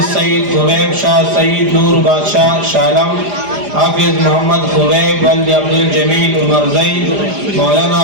سید خبیب شاہ سید نور بادشاہ شالم، حافظ محمد خبیب ولد عبد الجمیل عمر زئی، مولانا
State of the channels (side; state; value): left; late; 4.9 ms